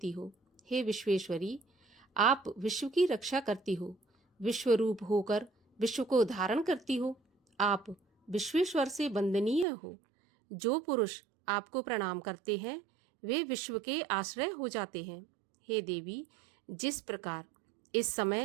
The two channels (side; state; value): left; drops out; at 9.7 s